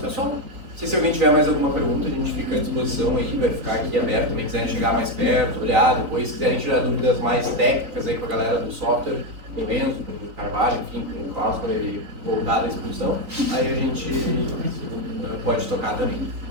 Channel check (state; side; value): late; left; 3.9 ms